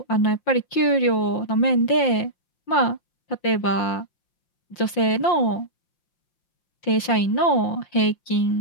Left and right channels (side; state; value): right; late; 5.7 ms